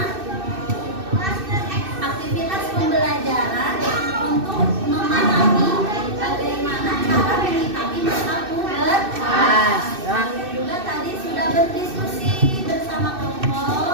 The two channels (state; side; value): late; left; 2.6 ms